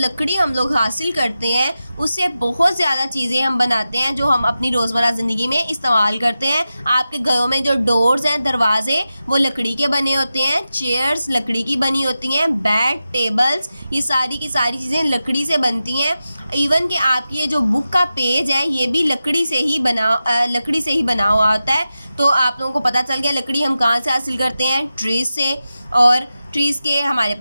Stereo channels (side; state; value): both; inverted; correlation -0.92